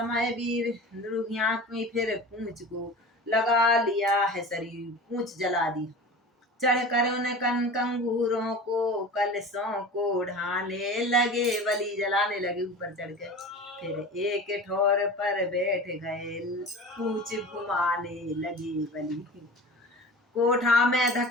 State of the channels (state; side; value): normal; both; correlation 0.36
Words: वीर नृहिया की फिर पूंछ को लगा लिया है शरीर, पूंछ जला दी। चढ़ कर उन कंगूरों को कलशों को ढाने लगे, बलि जलाने लगे ऊपर चढ़ के। फिर एक ठोर पर बैठ गए, पूंछ घुमाने लगे बलि। कोठा में